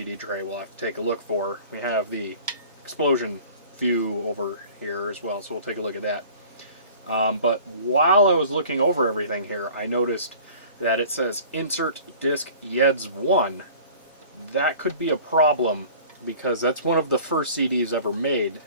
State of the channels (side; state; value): both; inverted; correlation -0.46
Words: tray we'll have to take a look for. We have the explosion view over here as well, so we'll take a look at that. But while I was looking over everything here, I noticed that it says Insert Disc YEDS 1. That could be a problem, because that's one of the first CDs ever made.